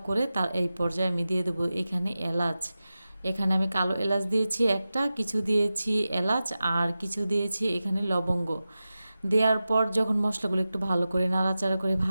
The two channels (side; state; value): both; inverted; correlation -0.94